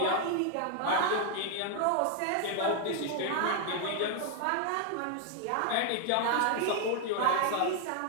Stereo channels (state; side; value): different; both; correlation 0.00